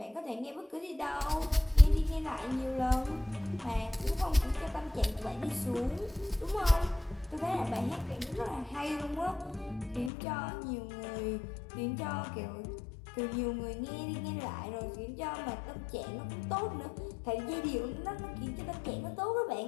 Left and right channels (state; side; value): drops out; right; at 10.1 s